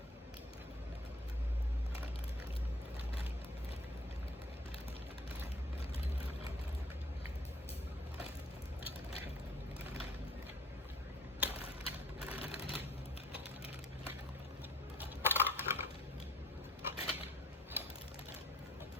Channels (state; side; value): normal; both; correlation 0.54